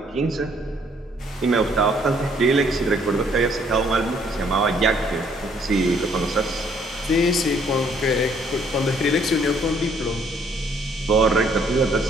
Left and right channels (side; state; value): both; normal; correlation 0.65